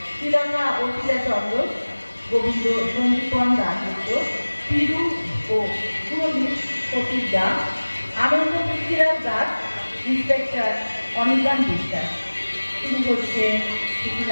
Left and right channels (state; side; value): inverted; both; correlation -1.00